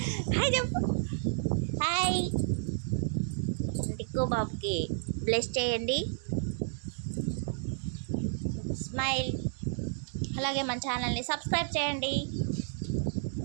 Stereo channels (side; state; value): left; silent; digital silence